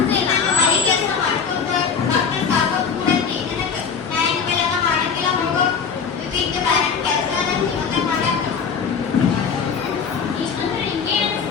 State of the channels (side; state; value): right; quieter; 6.2 dB